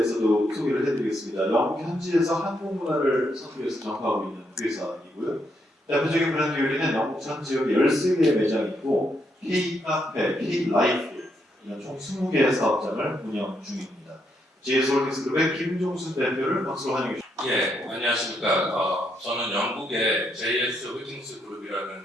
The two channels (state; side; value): normal; both; correlation 0.78